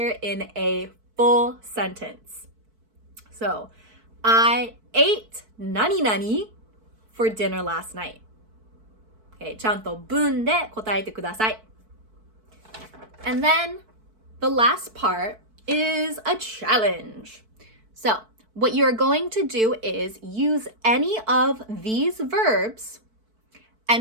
in a full sentence. So, I ate nani nani for dinner last night. Okay, ちゃんと文で答えてください. And then the last part is a challenge. So, what you're going to do is use any of these verbs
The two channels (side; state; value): left; late; 4.6 ms